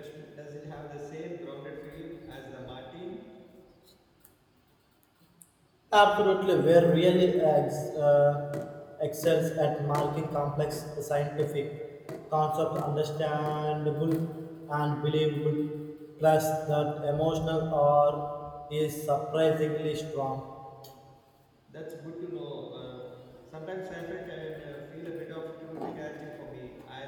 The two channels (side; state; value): both; identical; correlation 1.00